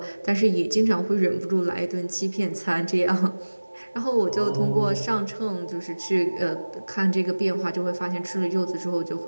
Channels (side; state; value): both; inverted; correlation -1.00